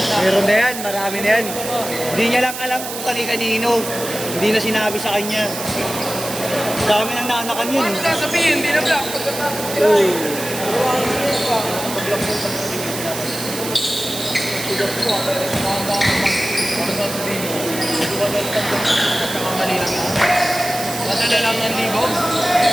Meron na yan, marami na yan. Hindi niya lang alam kung kani-kanino. Hindi na sinabi sa kanya. Dami nang naanakan yun. Ano sasabihin? Hindi na black. Uy. Nadala lang ng libo.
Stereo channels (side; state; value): right; noise; hiss, 8 dB below the sound